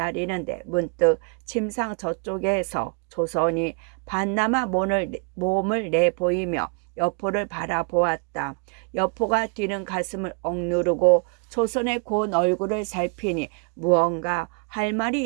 문득 침상 저쪽에서 조선이 반나마 몸을 내보이며 여포를 바라보았다. 여포가 뛰는 가슴을 억누르고 조선의 고운 얼굴을 살피니 무언가 할 말이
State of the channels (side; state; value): left; quieter; 35.7 dB